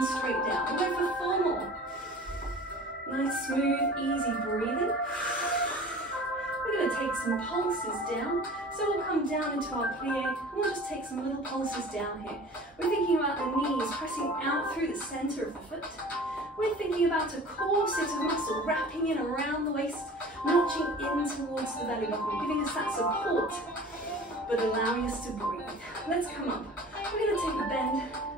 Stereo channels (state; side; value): normal; both; correlation 0.42